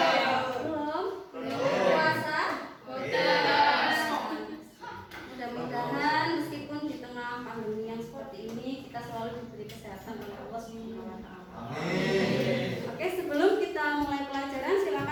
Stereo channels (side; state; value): both; identical; correlation 1.00